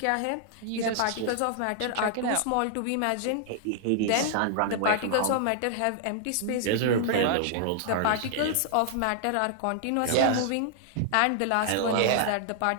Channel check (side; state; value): both; different; correlation -0.01